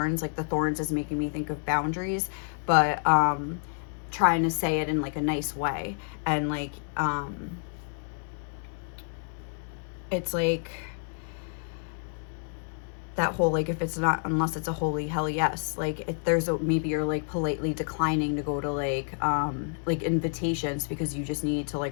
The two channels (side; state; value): right; silent; 59 dB below the other